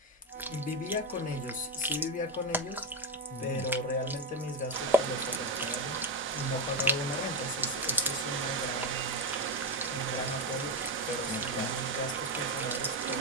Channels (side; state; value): both; normal; correlation 0.12